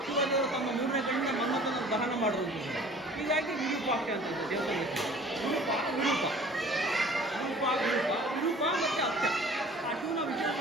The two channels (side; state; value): both; normal; correlation 0.48